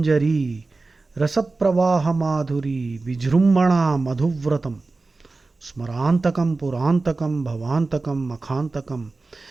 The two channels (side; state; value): left; quieter; 3.6 dB